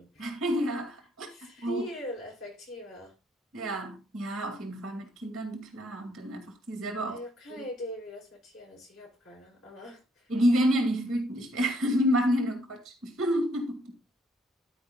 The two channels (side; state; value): both; normal; correlation 0.69